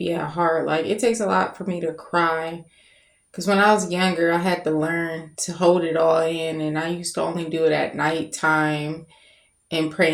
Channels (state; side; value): identical; both; correlation 1.00